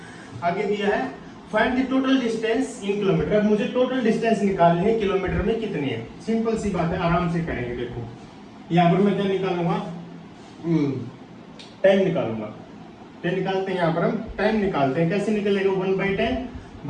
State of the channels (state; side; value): identical; both; correlation 1.00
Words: आगे दिया है find the total distance in kilometre, अब मुझे टोटल डिस्टेंस निकालनी है, किलोमीटर में कितनी है, सिंपल सी बात है, आराम से करेंगे। देखो यहाँ पर मैं क्या निकालूंगा, टाइम निकालूंगा, टाइम निकालते हैं, यहाँ पर हम टाइम निकालते हैं, कैसे निकलेगा, 1/10